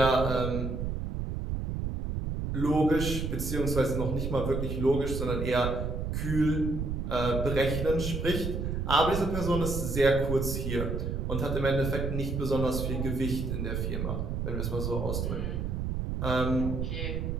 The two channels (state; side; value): noise; right; rumble, 2 dB below the sound